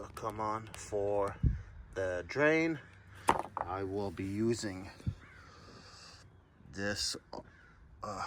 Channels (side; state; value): both; identical; correlation 1.00